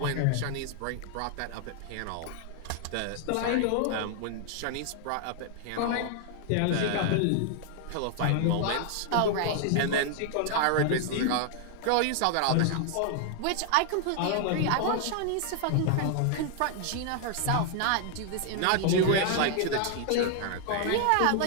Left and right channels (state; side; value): different; both; correlation 0.00